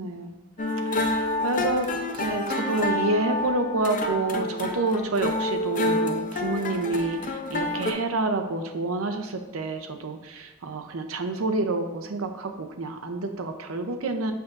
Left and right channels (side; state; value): both; normal; correlation 0.03